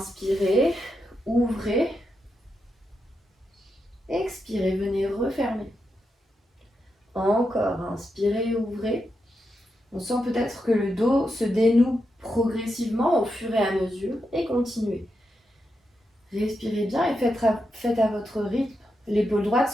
ouvrez. Expirez, venez refermer. Encore, inspirez, ouvrez. On sent peut-être que le dos se dénoue progressivement au fur et à mesure et continuez. Respirez bien et faites à votre rythme. L'épaule droite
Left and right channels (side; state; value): both; normal; correlation 0.85